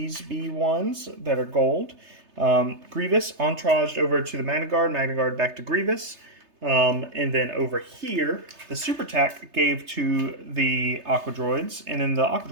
B1s that are gold. Grievous entouraged over to the Magna Guard back to Grievous. And then over here, the Super Tac gave to the Aqua Droids, and then the Aqua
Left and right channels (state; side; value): late; left; 3.3 ms